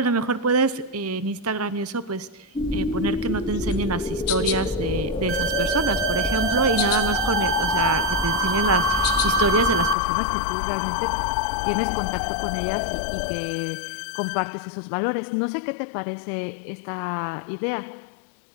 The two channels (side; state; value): right; drops out; at 10.0 s